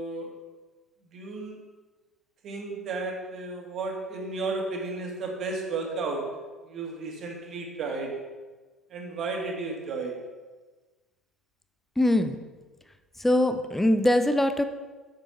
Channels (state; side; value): normal; both; correlation 0.75